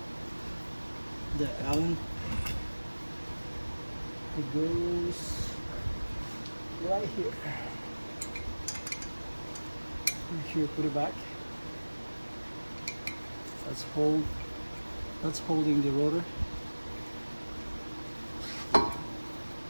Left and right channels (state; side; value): inverted; both; correlation -1.00